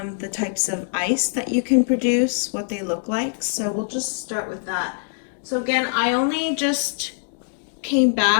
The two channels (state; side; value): silent; right; digital silence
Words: the types of ice that you can produce, what they look like. So we'll just start with that. So again, I only just came